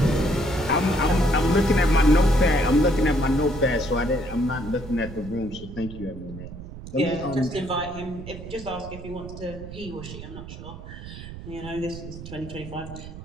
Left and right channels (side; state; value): right; noise; rumble, 12 dB below the sound